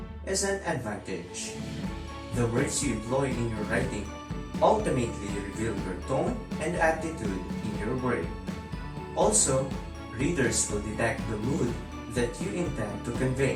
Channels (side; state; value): both; identical; correlation 1.00